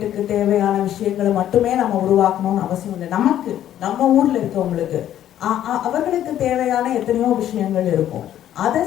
தேவையான விஷயங்களை மட்டுமே நம்ம உருவாக்கணும்னு அவசியம் இல்லை. நமக்கு நம்ம ஊரில் இருக்கவங்களுக்கு அவர்களுக்கு தேவையான எத்தனையோ விஷயங்கள் இருக்கும். அதை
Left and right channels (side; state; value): right; quieter; 11.5 dB